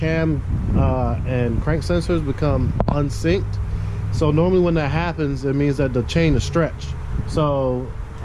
and crank sensors become unsynced. So normally when that happens, it means that the chain is stretched. So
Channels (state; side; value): identical; both; correlation 1.00